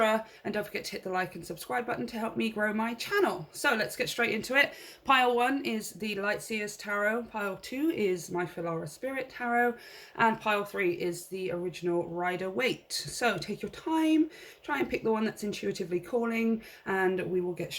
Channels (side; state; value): both; identical; correlation 1.00